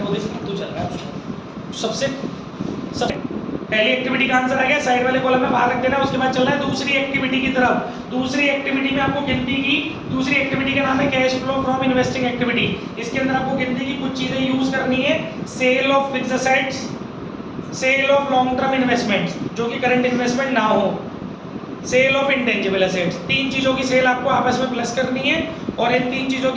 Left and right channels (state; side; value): identical; both; correlation 1.00